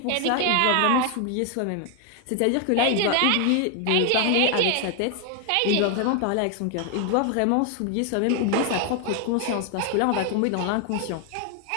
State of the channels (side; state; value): both; different; correlation 0.01